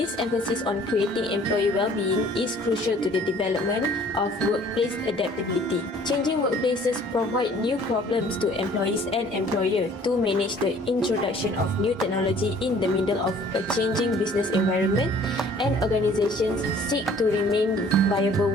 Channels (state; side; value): normal; both; correlation 0.54